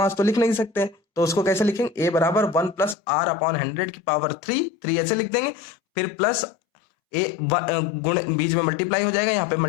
तो लिख नहीं सकते, तो उसको कैसे लिखेंगे, A बराबर 1 + R/100 की पावर 3 ऐसे लिख देंगे, फिर प्लस ए गुण बीच में मल्टीप्लाई हो जाएगा, यहाँ पे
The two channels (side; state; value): right; drops out; at 3.0 s